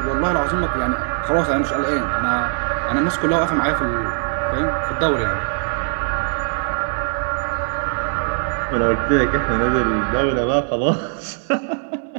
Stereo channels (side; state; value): left; silent; 56 dB below the other